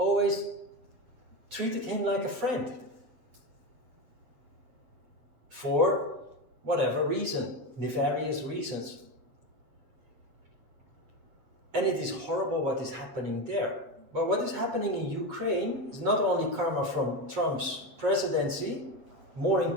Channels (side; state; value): left; late; 7.7 ms